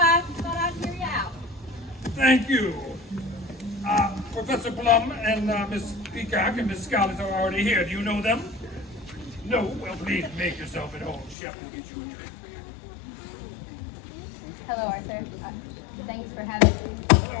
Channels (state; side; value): drops out; right; at 11.4 s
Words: thought I'd hear you out. Thank you. Professor Plum and Miss Peacock and Miss Scarlett are already here. Do you know them? No? Well, please make yourself at home. Chef will get you a drink. Hello, Arthur. Thanks for having me.